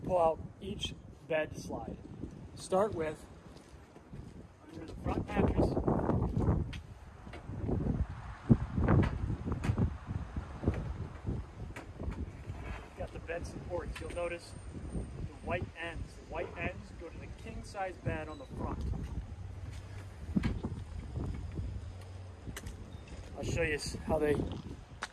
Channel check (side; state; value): both; identical; correlation 1.00